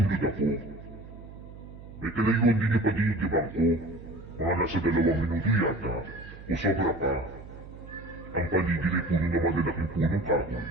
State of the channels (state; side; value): noise; right; hum, 16 dB below the sound